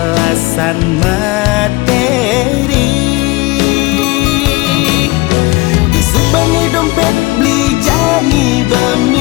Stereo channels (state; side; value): quieter; right; 22.4 dB